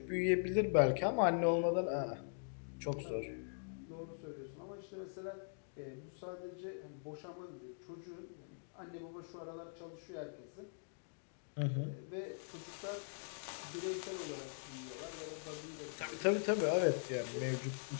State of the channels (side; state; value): right; silent; digital silence